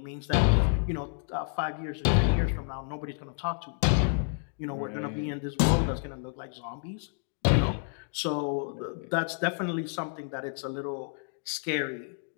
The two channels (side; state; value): right; silent; 58 dB below the other